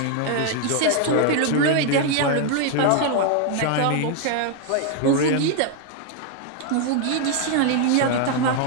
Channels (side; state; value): both; different; correlation 0.00